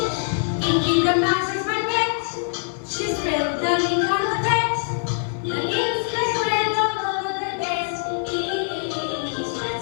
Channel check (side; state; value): right; silent; 57 dB below the other